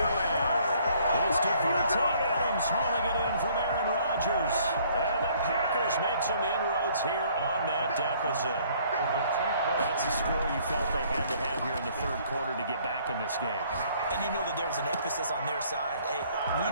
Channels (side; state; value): both; inverted; correlation -0.61